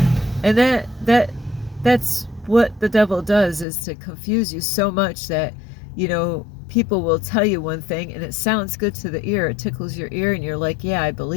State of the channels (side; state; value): right; drops out; at 3.7 s